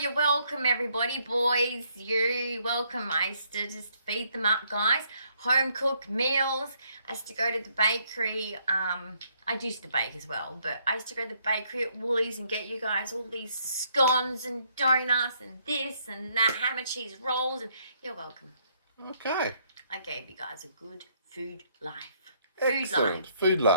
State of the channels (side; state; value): both; inverted; correlation -0.70